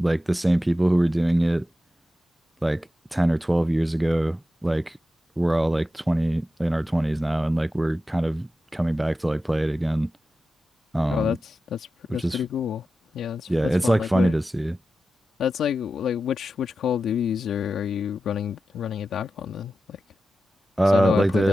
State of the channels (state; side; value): normal; both; correlation 0.92